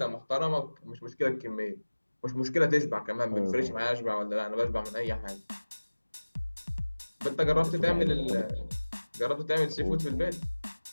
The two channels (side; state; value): both; inverted; correlation -1.00